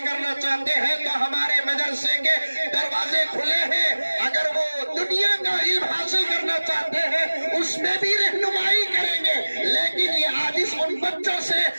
کرنا چاہتے ہیں تو ہمارے مدرسے کے دروازے کھلے ہیں۔ اگر وہ دنیا کا علم حاصل کرنا چاہتے ہیں اس میں بھی رہنمائی کریں گے، لیکن یہ حادث ان بچوں سے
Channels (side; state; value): both; inverted; correlation -1.00